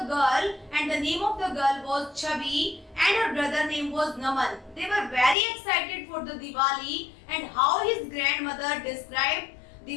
girl, and the name of the girl was Chabi, and her brother name was Naman. They were very excited for the Diwali and how his grandmother described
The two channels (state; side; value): drops out; right; at 5.4 s